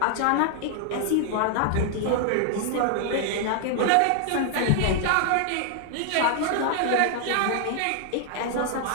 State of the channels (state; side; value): different; both; correlation 0.00